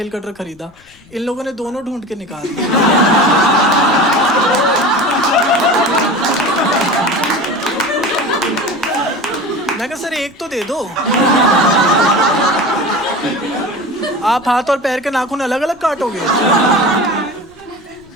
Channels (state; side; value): noise; left; rumble, 28 dB below the sound